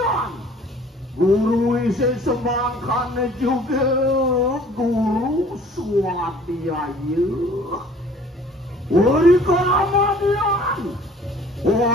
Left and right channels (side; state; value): both; normal; correlation 0.52